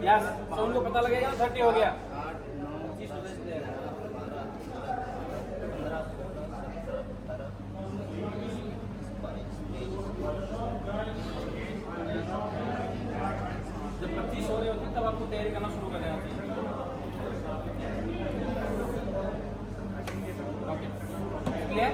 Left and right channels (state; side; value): identical; both; correlation 1.00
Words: यस, साउंड को पता लगेगा 30 हो गया. जब 25 हो रहे होते तब आपको तैयारी करना शुरू कर देना चाहिए. Okay clear.